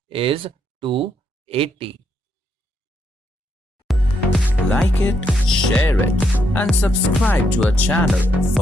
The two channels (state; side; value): normal; both; correlation 0.77